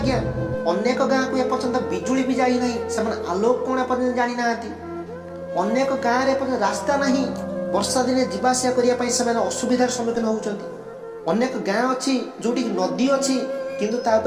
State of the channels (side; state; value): both; identical; correlation 1.00